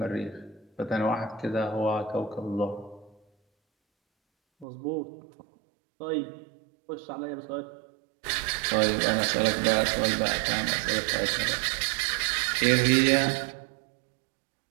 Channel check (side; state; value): left; drops out; at 4.7 s